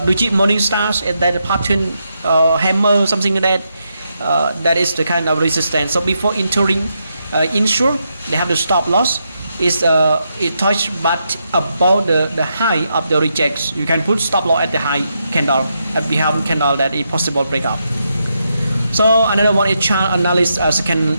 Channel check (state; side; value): inverted; both; correlation -0.82